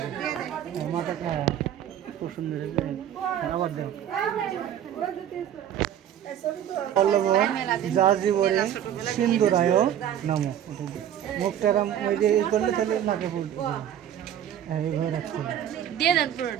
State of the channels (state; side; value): quieter; left; 10.4 dB